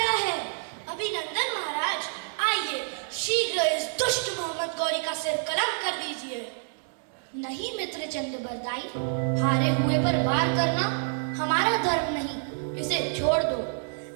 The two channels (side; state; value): left; silent; digital silence